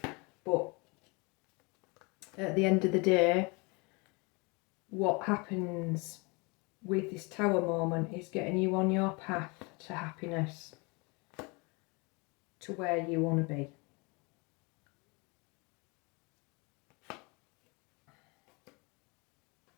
But at the end of the day, what happens with this tower moment is getting you on your path to happiness, to where you want to be.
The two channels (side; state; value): right; quieter; 28.9 dB